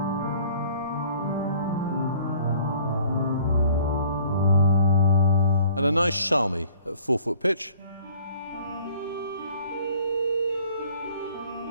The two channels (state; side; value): inverted; both; correlation -0.54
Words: and a nice shalmi at 4-foot pitch.